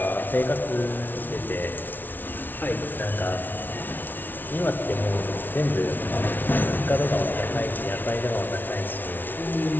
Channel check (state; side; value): late; right; 0.089 ms